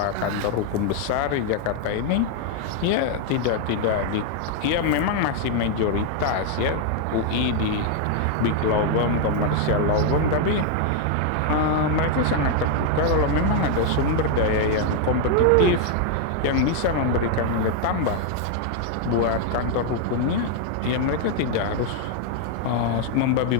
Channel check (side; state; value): both; different; correlation 0.00